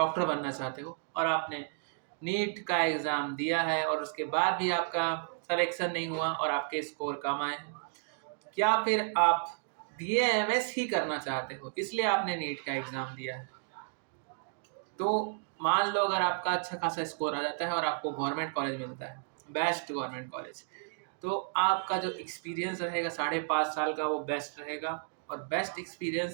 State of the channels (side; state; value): left; silent; digital silence